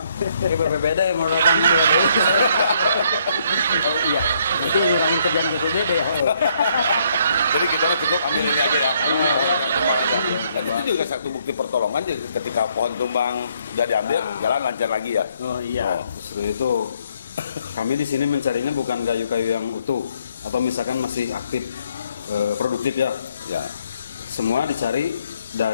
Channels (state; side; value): inverted; both; correlation -0.69